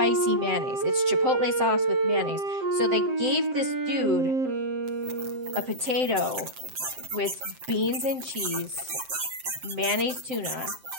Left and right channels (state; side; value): late; left; 7.7 ms